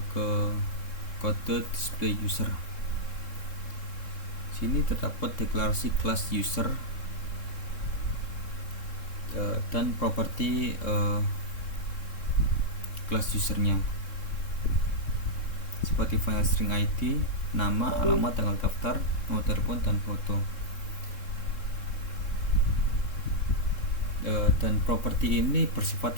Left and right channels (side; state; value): right; late; 3.7 ms